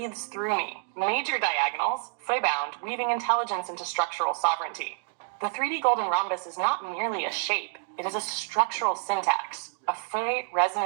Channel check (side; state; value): left; silent; 59 dB below the other